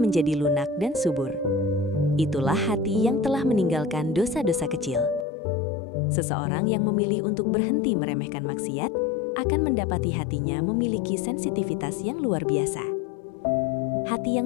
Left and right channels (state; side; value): drops out; right; at 5.2 s